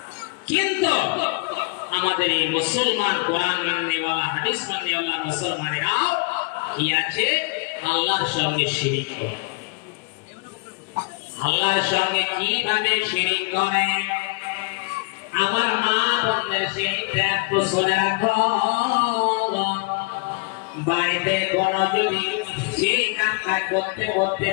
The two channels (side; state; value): right; quieter; 30.7 dB